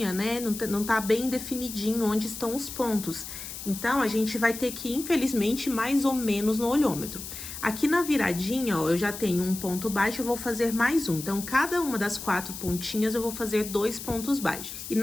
né? Não tá bem definidinho onde estão os pontos. Então, a gente vai ter que, infelizmente, mais ou menos no olhômetro. Aqui na viradinha, ó, eu já tenho um ponto baixo, eu vou fazer mais um. Então, cada uma das 4 pontinhas, eu vou fazer 2 pontos baixos. E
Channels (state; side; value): noise; left; hiss, 9 dB below the sound